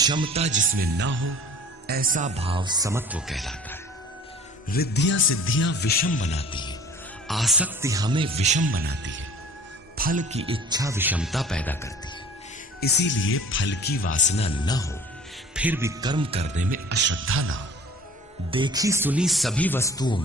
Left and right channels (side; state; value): both; normal; correlation 0.46